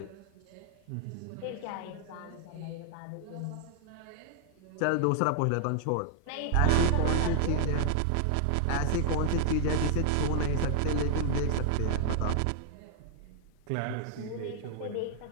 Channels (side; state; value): both; different; correlation 0.00